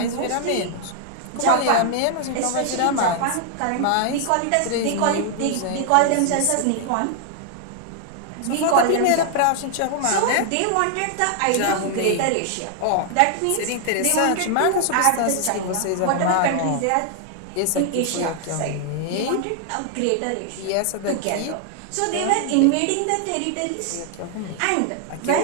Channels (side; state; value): both; different; correlation 0.00